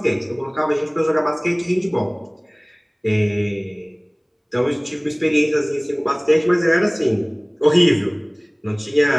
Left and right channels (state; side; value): identical; both; correlation 1.00